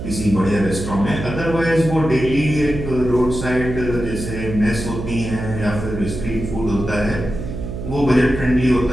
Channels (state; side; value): noise; right; hum, 7 dB below the sound